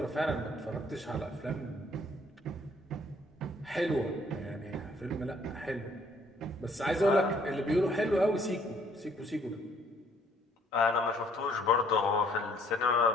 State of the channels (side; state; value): both; normal; correlation 0.63